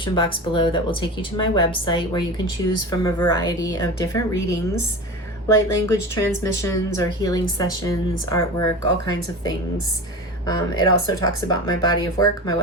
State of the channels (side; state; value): both; normal; correlation 0.30